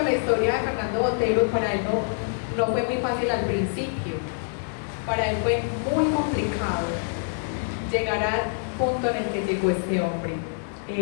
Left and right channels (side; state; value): right; silent; digital silence